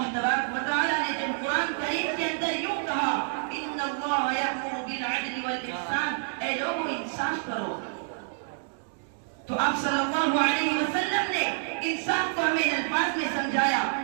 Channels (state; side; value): silent; left; digital silence